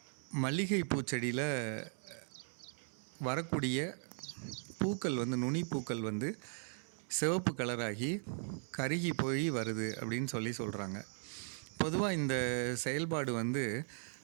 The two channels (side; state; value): left; silent; 52 dB below the other